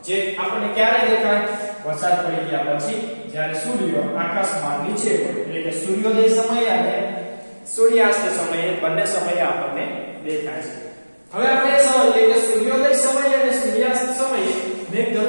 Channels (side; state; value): both; inverted; correlation -1.00